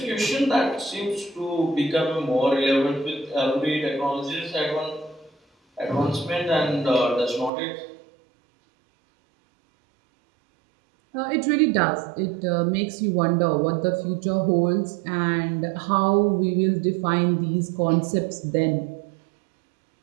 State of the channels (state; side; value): drops out; left; at 7.5 s